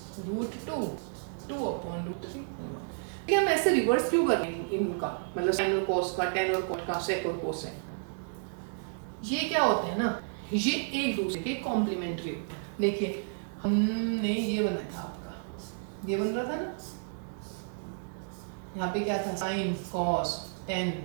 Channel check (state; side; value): silent; left; digital silence